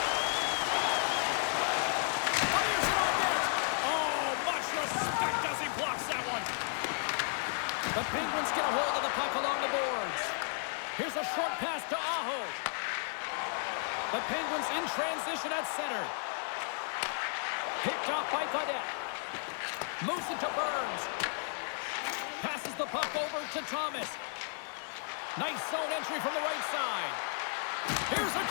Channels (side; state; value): right; silent; 55 dB below the other